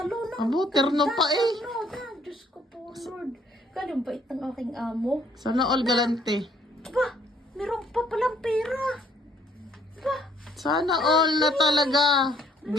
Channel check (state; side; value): normal; both; correlation 0.63